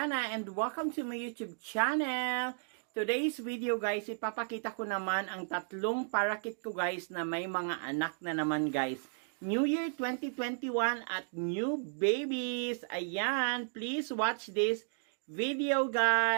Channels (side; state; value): left; silent; digital silence